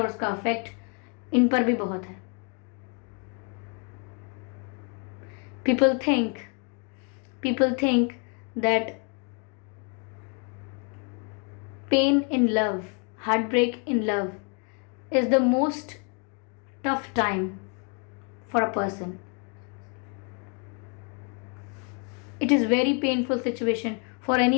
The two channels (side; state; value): right; quieter; 36.4 dB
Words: उसका इफेक्ट इन पर भी बहुत है। people think that pain in love, heartbreak in love is the most tough time for a person. It is very painful situation for